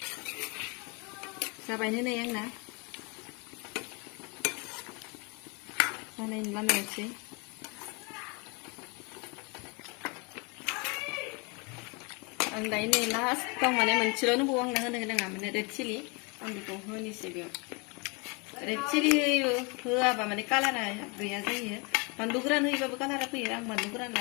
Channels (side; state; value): right; quieter; 30.9 dB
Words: जाबायनो नै आंना जानायनि लामायावसै आं दायो नै लास्टाव माने मोनसेल' नंबावो आंनो होनो गोनाङा माने रेड चिलि आं बेखौ होनोसै बेयाव रेड चिलि होआबा माने कालारा गैया जायो बानलु गोरान होयोबाबो कालारा फैयो आं बानलु गोरान